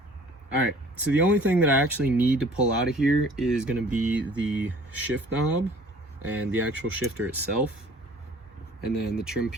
All right, so the only thing that I actually need to pull out of here is gonna be the shift knob and the actual shifter itself, and then the trim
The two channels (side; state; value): both; normal; correlation 0.52